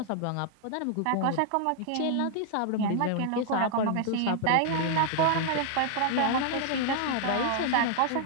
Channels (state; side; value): different; both; correlation 0.00